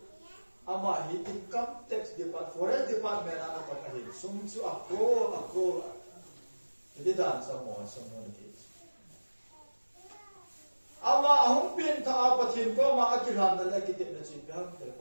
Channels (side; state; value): both; inverted; correlation -1.00